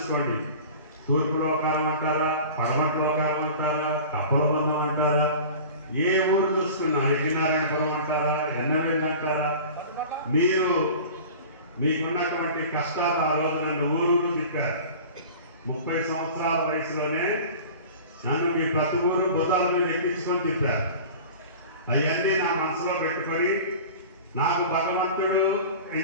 తూర్పు లోకాలం అంటారా, పడమటి లోకాలం అంటారా, కప్పలబంధం అంటారా, ఏ ఊరు చూసుకున్నా యజ్ఞనారాయణపురం అంటారా, ఎన్నవేలు అంటారా, మీకున్నటువంటి కష్టాలు ఆ రోజు నన్ను ఊరూరు తిప్పారు. 30 సంవత్సరాల వయసులోనే నన్ను మీ ప్రతి ఊరు బుధాల మీద ఎక్కించుకొని తిప్పారు. అవన్నీ నా మనసులో పెట్టుకొని, నాకు భగవంతుడు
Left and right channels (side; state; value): both; inverted; correlation -0.38